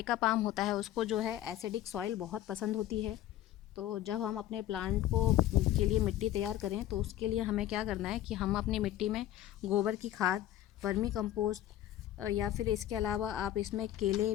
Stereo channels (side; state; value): right; quieter; 13.0 dB